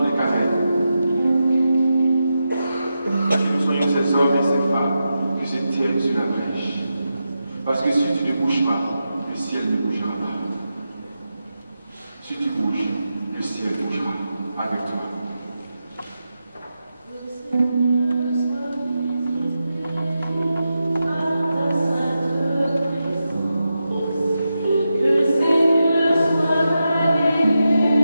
de carême, que nous soyons ces hommes et ces femmes qui se tiennent sur la brèche. Parce que si tu ne bouges pas, le ciel ne bougera pas. Si tu bouges, le ciel bougera avec toi.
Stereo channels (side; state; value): both; inverted; correlation -0.89